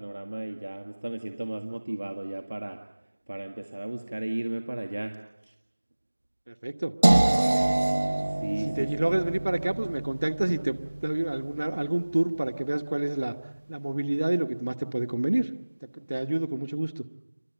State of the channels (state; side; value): inverted; both; correlation -1.00